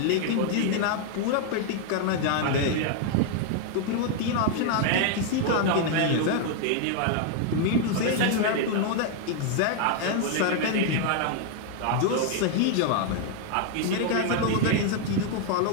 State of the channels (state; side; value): different; both; correlation 0.00